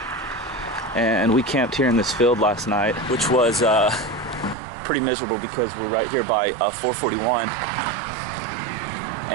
and we camped here in this field last night, which was pretty miserable because we're right here by 441,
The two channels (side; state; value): left; drops out; at 4.5 s